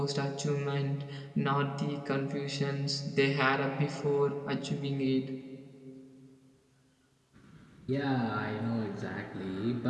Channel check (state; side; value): identical; both; correlation 1.00